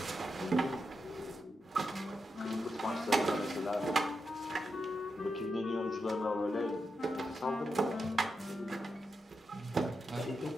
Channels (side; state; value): both; normal; correlation 0.86